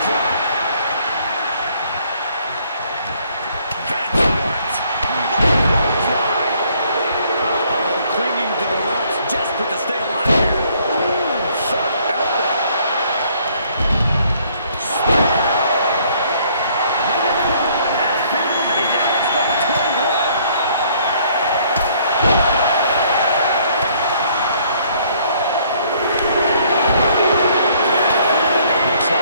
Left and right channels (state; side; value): inverted; both; correlation -0.63